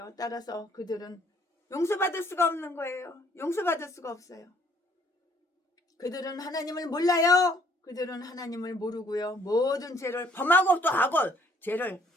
따라서 그들은 용서받을 수가 없는 거예요. 용서받을 수가 없어요. 그들은 하나님을 몰라요. 그들은 하나님을 모르고요. 모든 죄를 범하고 또 하고, 죄를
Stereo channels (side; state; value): both; normal; correlation 0.62